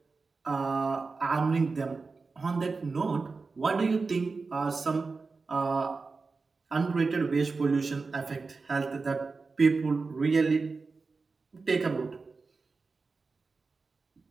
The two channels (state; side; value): quieter; left; 4.2 dB